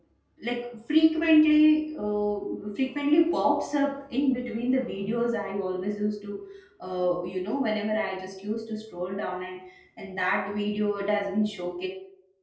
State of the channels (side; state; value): both; identical; correlation 1.00